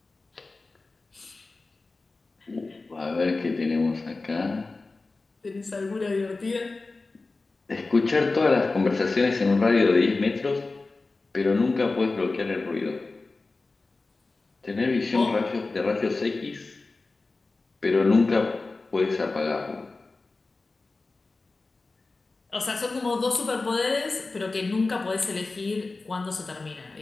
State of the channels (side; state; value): right; quieter; 3.6 dB